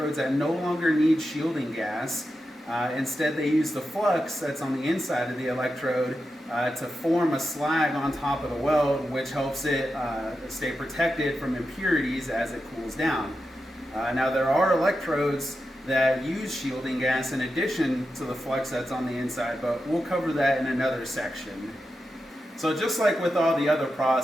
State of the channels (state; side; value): normal; both; correlation 0.89